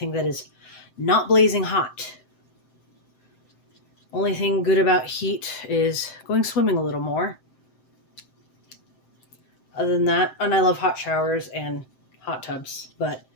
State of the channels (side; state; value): right; late; 7.7 ms